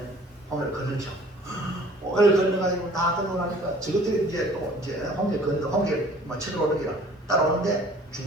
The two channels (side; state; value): both; normal; correlation 0.52